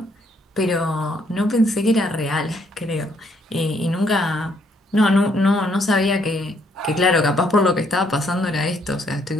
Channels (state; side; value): normal; both; correlation 0.70